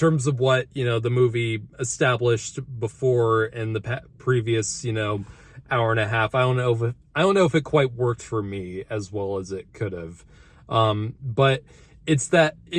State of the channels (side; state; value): both; identical; correlation 1.00